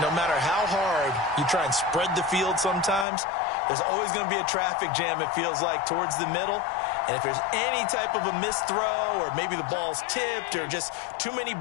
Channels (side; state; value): right; drops out; at 3.1 s